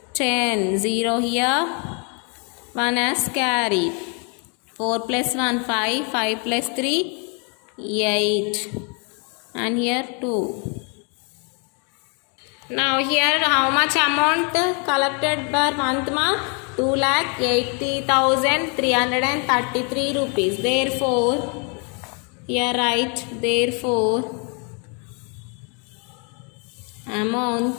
10, 0 here, 1 as carry. 4 plus 1, 5, 5 plus 3, 8, and here 2. Now here how much amount collected per month, 2,80,333 rupees. Therefore here write, therefore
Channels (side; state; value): right; quieter; 36.7 dB